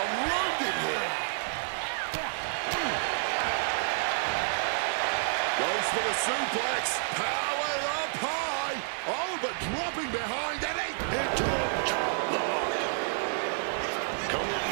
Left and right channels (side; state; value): left; silent; digital silence